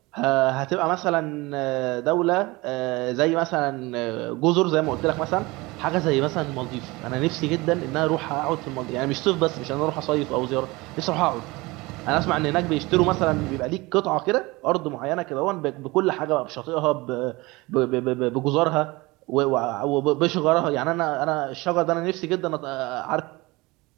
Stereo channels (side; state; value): left; quieter; 22.6 dB